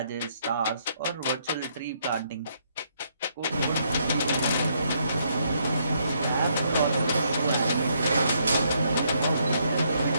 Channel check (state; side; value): inverted; both; correlation -0.73